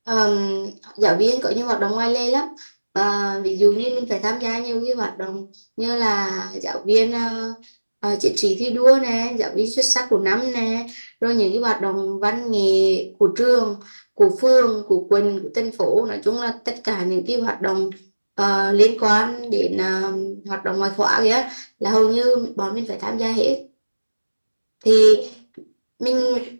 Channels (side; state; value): both; inverted; correlation -1.00